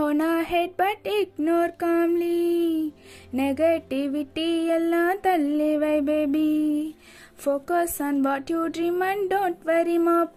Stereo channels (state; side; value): identical; both; correlation 1.00